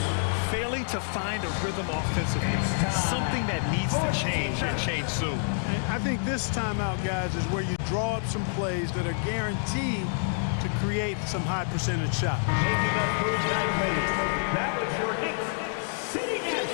Failing to find a rhythm offensively. Something that needs to change and change soon. I think this timeout, guys, is where you draw up some plays that are guaranteed to create some high percentage shots. Taking up Bruce Knightley. That was your Knicks sitting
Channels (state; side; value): silent; right; digital silence